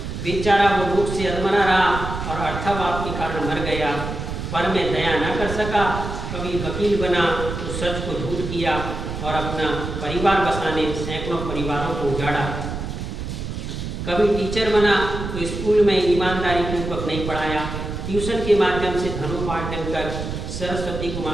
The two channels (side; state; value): right; noise; rumble, 6 dB below the sound